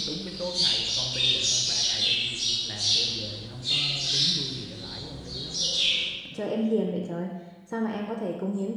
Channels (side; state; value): both; identical; correlation 1.00